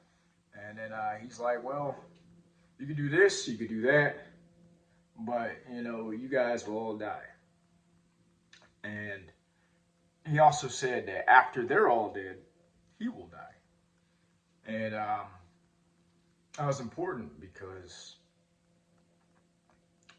And then he's like, "Well, you could do this, you could do that, but you guys will all die." And he also said that after they're all dead, he will die. And that was important because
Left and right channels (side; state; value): both; identical; correlation 1.00